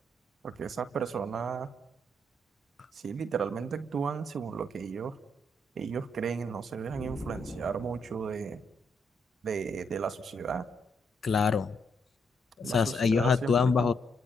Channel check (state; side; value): normal; both; correlation 0.76